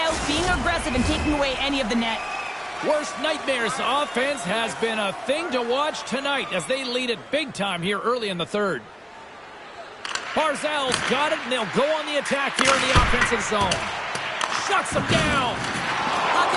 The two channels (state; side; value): identical; both; correlation 1.00